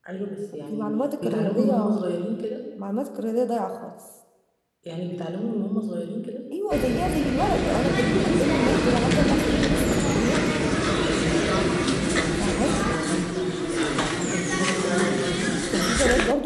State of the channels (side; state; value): both; identical; correlation 1.00